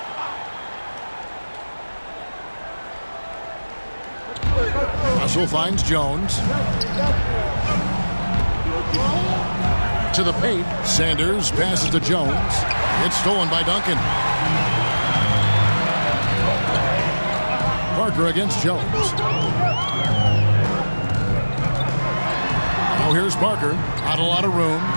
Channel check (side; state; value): both; inverted; correlation -1.00